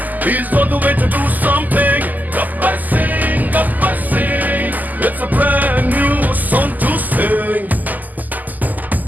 he's on the way to do something Gabbar Singh it's a brand new song to sing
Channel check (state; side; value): late; left; 0.082 ms